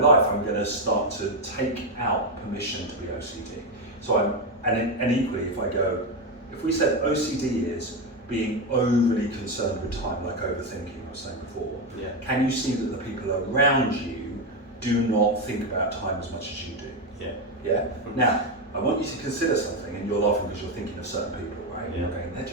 I'm going to start to take out permission to be OCD. So and equally, if we said OCD is being overly concerned with time, like overthinking I was saying before, can you see that the people around you do not think about time as much as you do. Yeah. Yeah? Now, I want you to consider something, and you're laughing because you're thinking of certain people, right? Yeah. You're going, they're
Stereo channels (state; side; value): normal; both; correlation 0.09